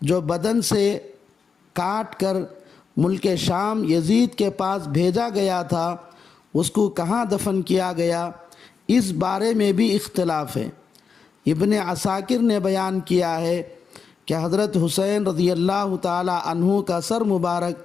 جو بدن سے کاٹ کر ملک شام یزید کے پاس بھیجا گیا تھا، اس کو کہاں دفن کیا گیا، اس بارے میں بھی اختلاف ہے۔ ابن عساکر نے بیان کیا ہے کہ حضرت حسین رضی اللہ تعالی عنہ کا سر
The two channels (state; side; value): quieter; right; 5.7 dB